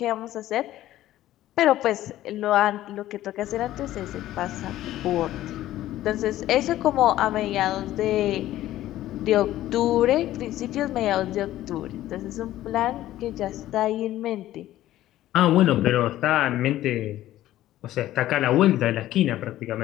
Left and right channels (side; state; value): right; quieter; 14.2 dB